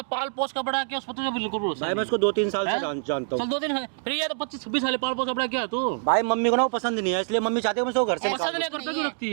पाल पोस का बड़ा किया उस पर तुझे बिल्कुल भरोसा भाई मैं नहीं। उसको 2-3 साल से हैं? जानता चल हूँ। 2 दिन है, फिर ये तो 25-26 साल पाल पोस का बड़ा किया तू। भाई मम्मी को ना वो पसंद नहीं है, इसलिए मम्मी चाहती है मैं उसको घर से पसंद नहीं, घर पे क्यों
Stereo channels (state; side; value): silent; left; digital silence